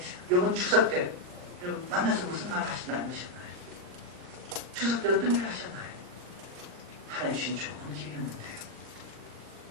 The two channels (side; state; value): left; late; 39 ms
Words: 이번 추석 때 여러분 만나서 무슨 말 하셨나요? 추석 때 어떤 일을 하셨나요? 하나님 주신 좋은 기회였는데요.